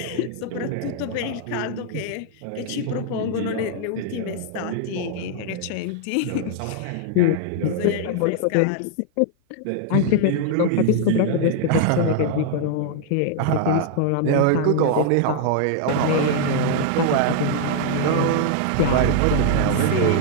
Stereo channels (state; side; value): different; both; correlation 0.00